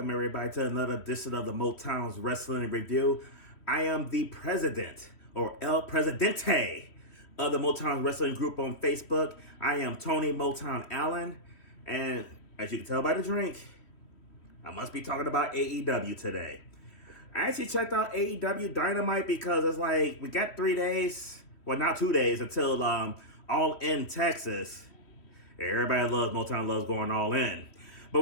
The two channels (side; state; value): right; late; 3.1 ms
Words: everybody to another edition of the Motown's Wrestling Review. I am the president, or El Presidente, of the Motown Wrestling Group on Facebook. I am Tony Motown Allen, and as you can tell by the drink, I must be talking about AEW today. I actually checked out AEW Dynamite because it's like, we got 3 days, well not 2 days, until All In Texas. Everybody loves, Motown loves going all in. But